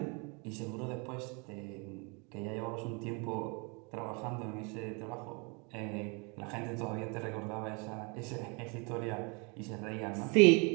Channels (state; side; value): quieter; left; 32.1 dB